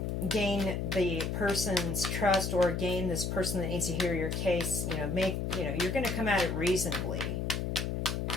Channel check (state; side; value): noise; left; hum, 1 dB below the sound